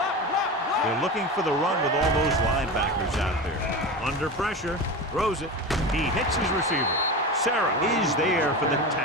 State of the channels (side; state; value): both; normal; correlation 0.26